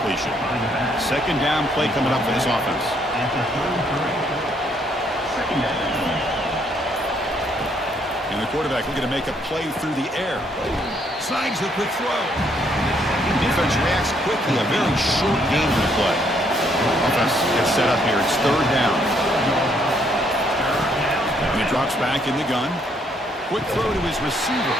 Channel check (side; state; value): both; normal; correlation 0.70